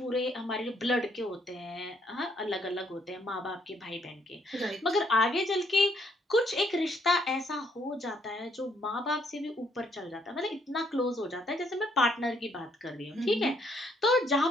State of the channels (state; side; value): normal; both; correlation 0.70